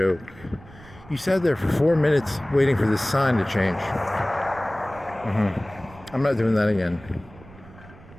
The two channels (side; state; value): right; noise; rumble, 20 dB below the sound